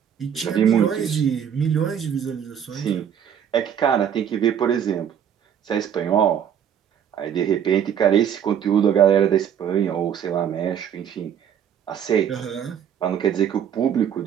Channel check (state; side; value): quieter; left; 8.8 dB